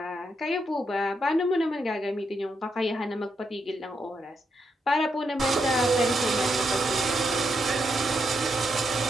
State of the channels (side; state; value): both; normal; correlation 0.81